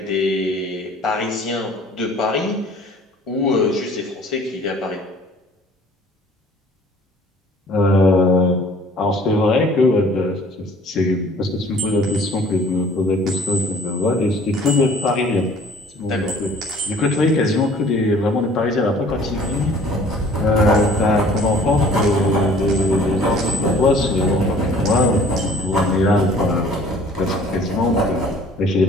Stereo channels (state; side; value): normal; both; correlation 0.52